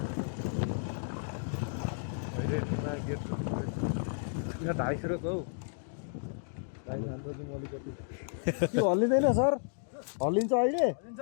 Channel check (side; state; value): right; silent; digital silence